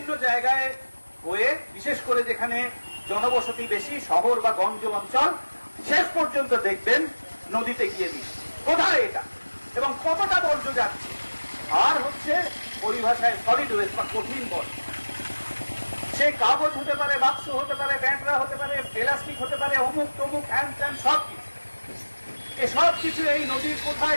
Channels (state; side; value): inverted; both; correlation -1.00